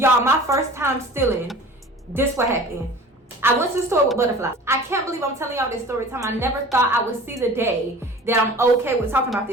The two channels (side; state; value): both; normal; correlation 0.42